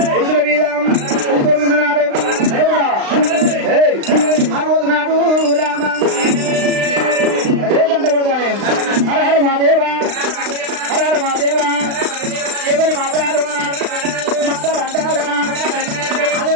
పురుషుల మీద కొనుక్కున్నాడు. ఆ రోజు నాడు రామ ఏ గంట కొడతానే హర హర మాదేవా హర హర మాదేవా ఎవరి మాట్లాడు అంటాడా అది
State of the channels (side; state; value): left; late; 36 ms